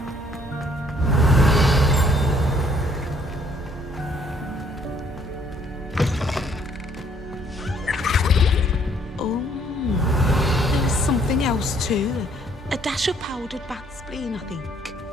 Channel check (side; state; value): both; normal; correlation 0.64